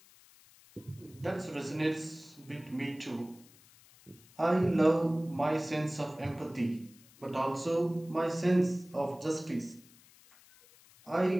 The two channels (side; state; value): left; noise; hiss, 25 dB below the sound